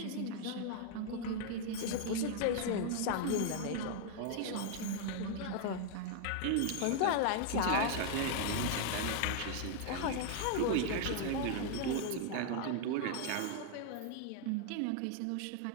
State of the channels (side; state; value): both; different; correlation 0.00